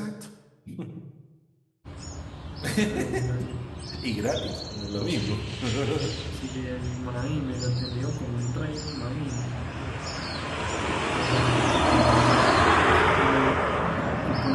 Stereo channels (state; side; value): identical; both; correlation 1.00